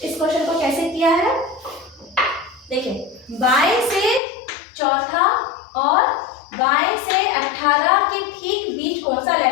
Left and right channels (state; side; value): drops out; right; at 4.2 s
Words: इस क्वेश्चन को कैसे किया है, देखिए बाएं से चौथा और बाएं से 18 के ठीक बीच कौन सा